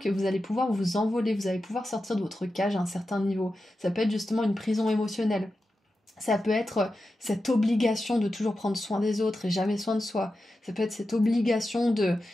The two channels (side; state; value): both; normal; correlation 0.91